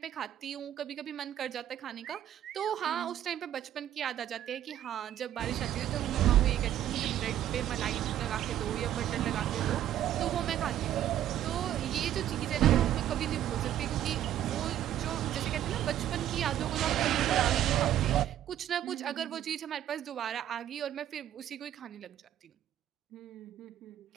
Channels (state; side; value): quieter; left; 11.6 dB